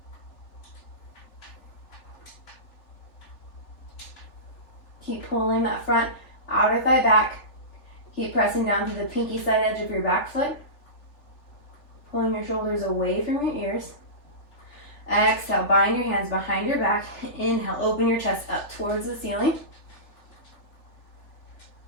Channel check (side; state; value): right; late; 3.4 ms